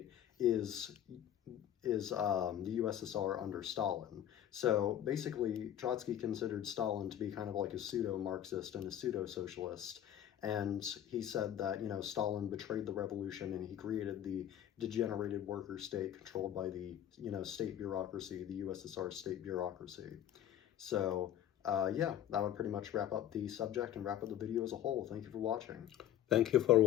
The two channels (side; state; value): right; quieter; 11.1 dB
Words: is the USSR under Stalin. So basically, Trotsky considered Stalin to be kind of like a pseudo-Marxist and a pseudo-socialist. And he said that, Stalin betrayed the revolution and he created the degenerated worker state controlled by the, state bureaucracy, the USSR state bureaucracy. So, yeah, that would pretty much wrap up the subject and wrap up the video as a whole. Thank you for watching. Thank you for